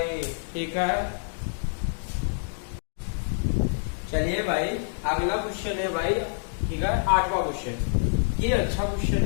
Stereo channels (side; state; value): right; silent; digital silence